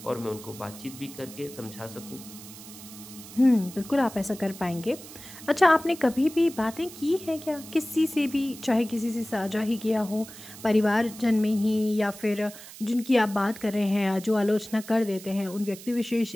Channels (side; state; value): right; noise; hiss, 16 dB below the sound